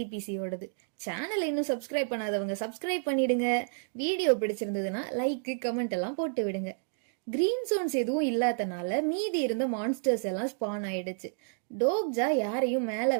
சேனலை இன்னும் சப்ஸ்கிரைப் பண்ணாதவங்க சப்ஸ்கிரைப் பண்ணிடுங்க. வீடியோ பிடிச்சிருந்ததுன்னா லைக் கமெண்ட் எல்லாம் போட்டு விடுங்க. கிரீன் ஜோன்ஸ் எதுவும் இல்லாதனால மீதி இருந்த மான்ஸ்டர்ஸ் எல்லாம் ஸ்பான் ஆயிடுச்சு. டோக்ஜா யாரையும் மேல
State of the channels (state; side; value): silent; left; digital silence